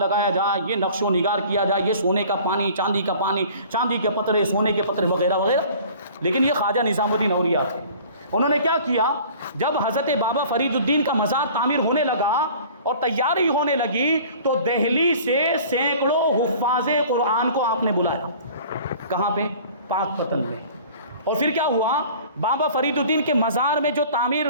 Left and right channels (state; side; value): inverted; both; correlation -0.47